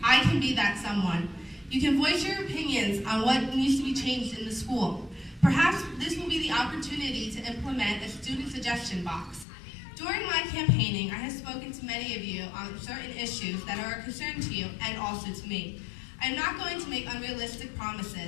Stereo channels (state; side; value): drops out; right; at 9.5 s